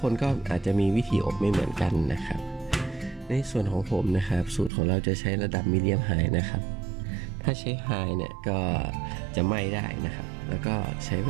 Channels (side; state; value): left; drops out; at 4.7 s